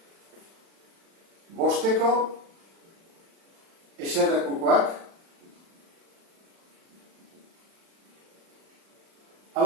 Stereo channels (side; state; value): left; late; 36 ms